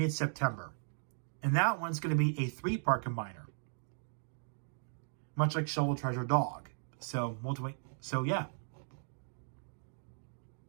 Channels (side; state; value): left; silent; digital silence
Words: And that one's going to be a 3-part combiner. Much like Shovel Treasure Dog. So, So, yeah.